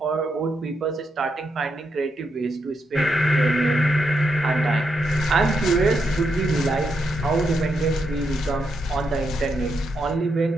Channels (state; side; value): normal; both; correlation 0.81